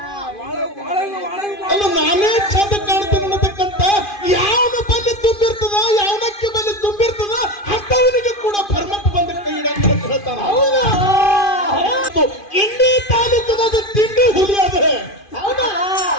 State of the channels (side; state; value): right; late; 2.5 ms